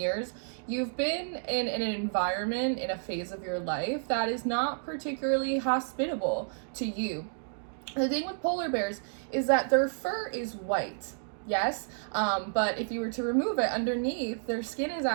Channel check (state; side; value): silent; left; digital silence